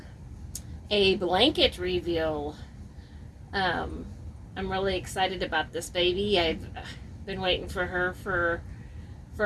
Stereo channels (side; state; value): both; identical; correlation 1.00